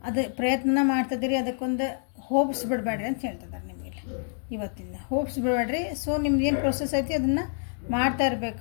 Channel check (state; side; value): silent; right; digital silence